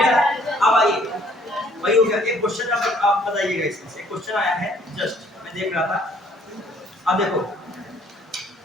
अब आइए, वही हो गया। एक क्वेश्चन आप बताइएगा, इसमें एक क्वेश्चन आया है, जस्ट मैं देख रहा था। अब देखो,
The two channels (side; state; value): both; normal; correlation 0.60